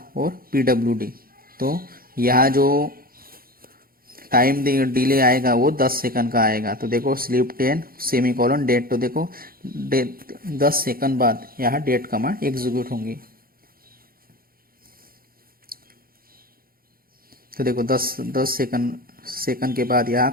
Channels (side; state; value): left; late; 0.42 ms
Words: और PWD। तो यहाँ जो टाइम डिले आएगा वो 10 सेकंड का आएगा। तो देखो स्लीप 10 सेमी कॉलन डेट, तो देखो 10 सेकंड बाद यहाँ डेट कमांड एग्जीक्यूट होंगी। तो देखो 10 सेकंड के बाद यहाँ